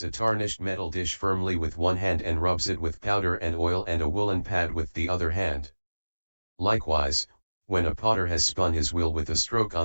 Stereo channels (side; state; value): both; inverted; correlation -1.00